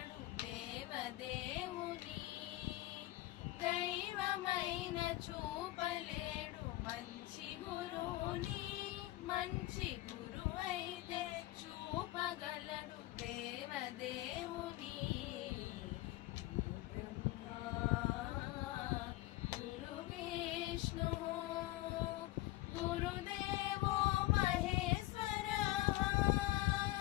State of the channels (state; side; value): quieter; right; 17.6 dB